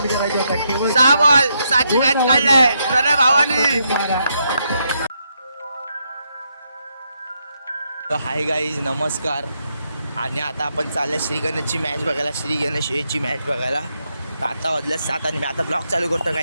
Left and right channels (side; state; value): both; inverted; correlation -0.79